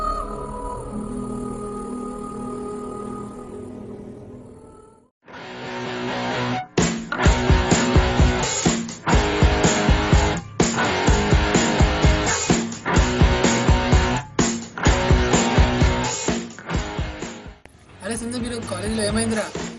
అరే సంజయ్, మీరు కాలేజీలో ఏమైందిరా?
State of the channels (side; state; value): both; identical; correlation 1.00